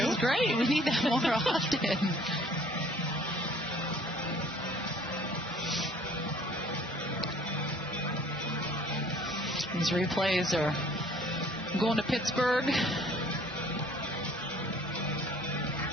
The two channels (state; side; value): normal; both; correlation 0.56